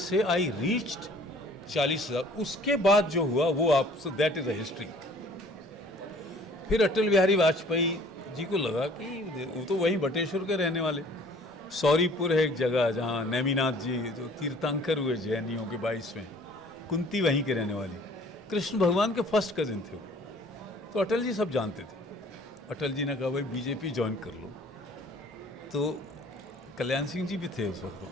आई रीच्ड 40,000। उसके बाद जो हुआ वो आप, so that is a history. फिर अटल बिहारी वाजपेयी जी को लगा कि वो तो वहीं बटेश्वर के रहने वाले, सौरीपुर है एक जगह जहाँ नेमिनाथ जी जो तीर्थंकर हुए जैनियों के 22वें, कुंती वहीं के रहने वाली, कृष्ण भगवान के फर्स्ट कजिन थे वो। तो अटल जी सब जानते थे। अटल जी ने कहा भाई बीजेपी ज्वाइन कर लो। तो कल्याण सिंह जी भी थे उस वक्त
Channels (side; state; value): both; normal; correlation 0.53